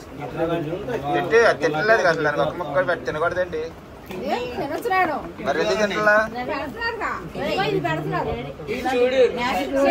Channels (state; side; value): identical; both; correlation 1.00